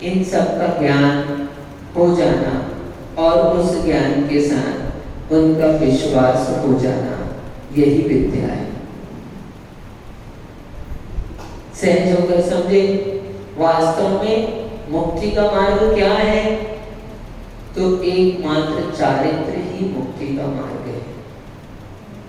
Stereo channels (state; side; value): identical; both; correlation 1.00